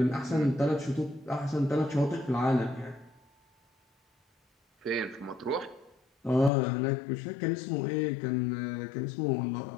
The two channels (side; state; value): right; drops out; at 6.5 s